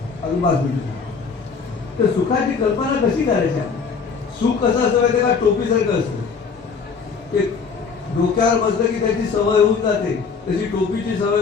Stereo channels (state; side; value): quieter; right; 5.5 dB